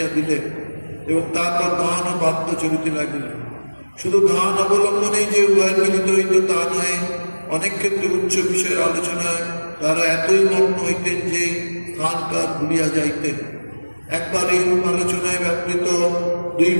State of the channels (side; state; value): both; inverted; correlation -1.00